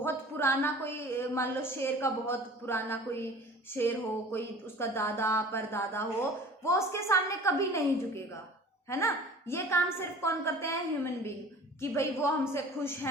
पुराना, कोई मान लो शेर का बहुत पुराना कोई शेर हो, कोई उसका दादा परदादा हो, वो उसके सामने कभी नहीं झुकेगा, है ना। ये काम सिर्फ कौन करते हैं? ह्यूमन बीइंग, कि भाई वो हमसे खुश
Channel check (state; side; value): normal; both; correlation 0.44